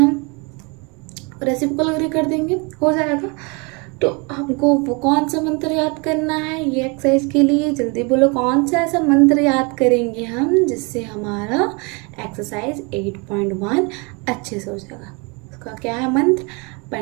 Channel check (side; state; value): left; quieter; 30.8 dB